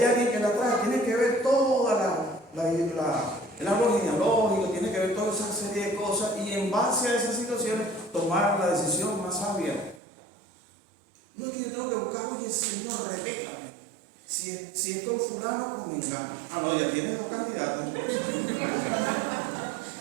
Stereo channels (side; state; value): left; drops out; at 10.0 s